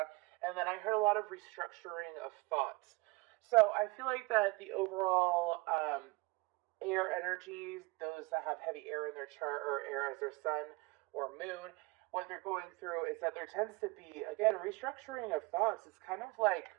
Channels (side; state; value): left; quieter; 24.1 dB